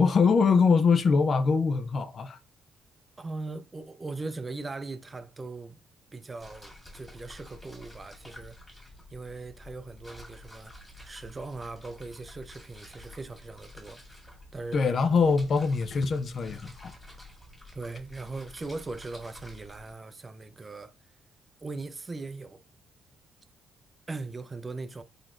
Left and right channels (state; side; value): quieter; right; 4.0 dB